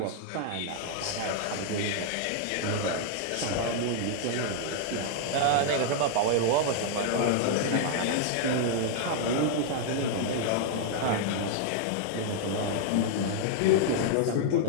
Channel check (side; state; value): both; different; correlation -0.01